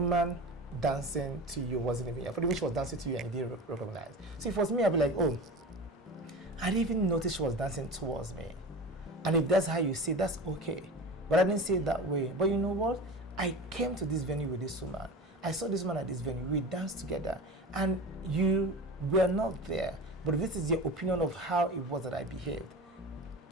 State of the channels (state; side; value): normal; both; correlation 0.32